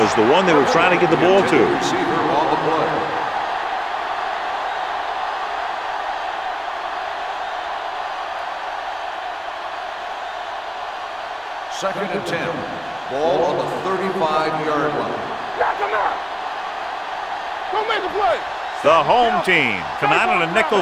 the one they were trying to get the ball to. Receiver on the play. Second and 10. Ball on the 35-yard line. Knock him out. Go make a play. The home team come out in a nickel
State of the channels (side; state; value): both; identical; correlation 1.00